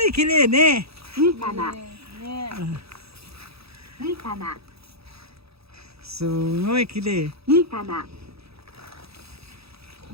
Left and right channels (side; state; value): left; late; 0.77 ms